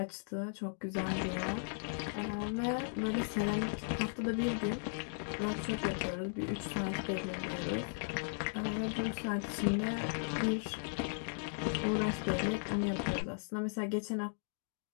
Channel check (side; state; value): right; silent; digital silence